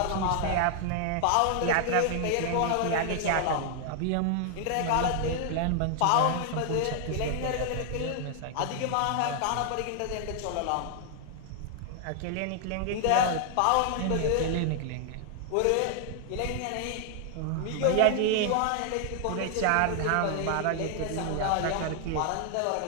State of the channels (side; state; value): both; different; correlation 0.00